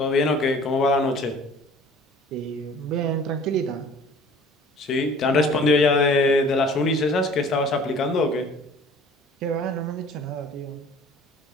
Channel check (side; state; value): both; normal; correlation 0.49